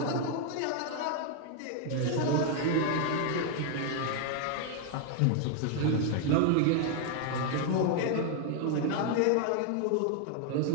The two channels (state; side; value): different; both; correlation 0.01